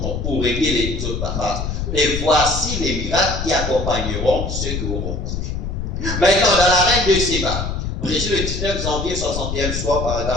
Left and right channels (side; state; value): left; noise; rumble, 3 dB below the sound